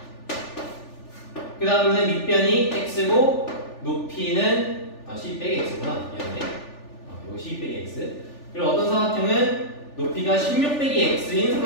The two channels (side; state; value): right; late; 3.4 ms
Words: 그 다음에 밑변이 x고 높이는 12 빼기 x구나. 미안해. 이거 12 빼기 x. 그리고 어떤 사각형은 높이가 16 빼기 x인